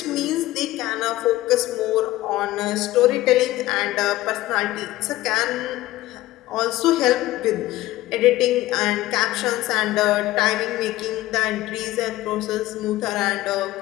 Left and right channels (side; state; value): right; quieter; 16.6 dB